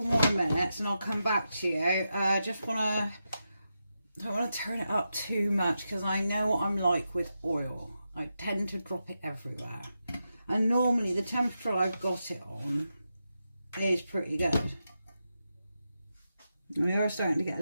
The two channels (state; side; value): inverted; both; correlation -0.88